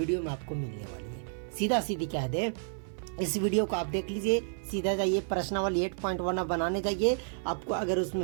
में आपको मिलने वाली है। सीधा सीधी कह दे, इस वीडियो को आप देख लीजिए, सीधा जाइए प्रश्नावली 8.1 आप बनाने जाइए। आपको अगर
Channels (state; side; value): silent; left; 55 dB below the other